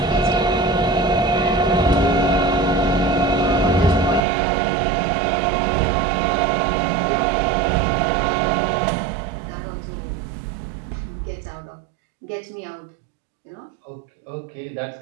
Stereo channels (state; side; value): drops out; left; at 4.2 s